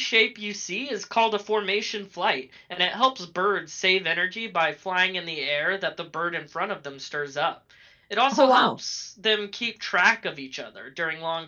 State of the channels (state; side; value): identical; both; correlation 1.00